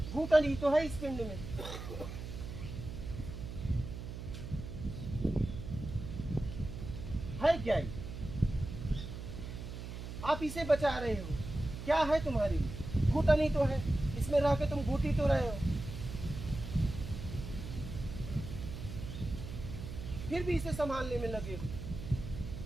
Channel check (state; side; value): noise; right; hum, 8 dB below the sound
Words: घूटन ही तो है इस पिंड में। है क्या ही, आप इसे बचा रहे हो, क्या है तुम्हारी, घुटन ही तो है, इसमें रह के तुम घुट ही तो रहे हो, फिर भी इसे संभालने में लगे हो।